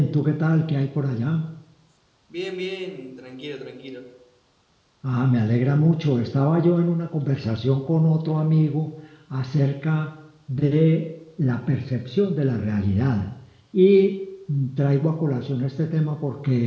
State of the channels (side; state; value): both; identical; correlation 1.00